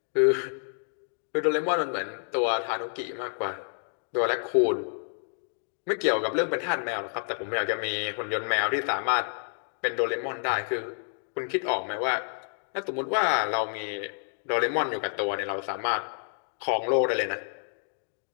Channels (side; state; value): right; silent; 59 dB below the other